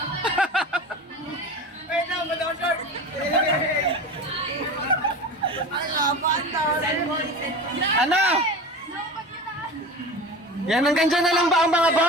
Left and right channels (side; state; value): both; normal; correlation 0.31